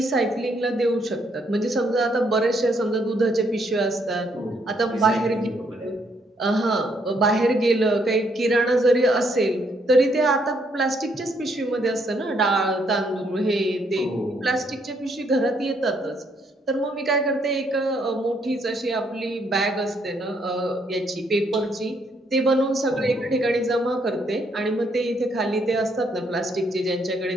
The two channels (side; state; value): both; normal; correlation 0.72